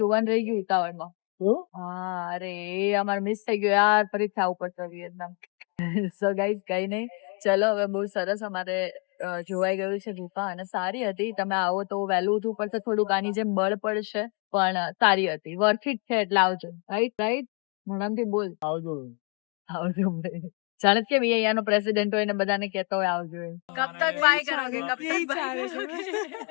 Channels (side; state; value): right; quieter; 35.7 dB